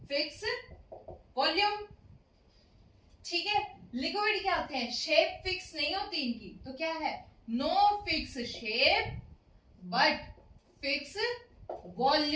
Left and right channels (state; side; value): identical; both; correlation 1.00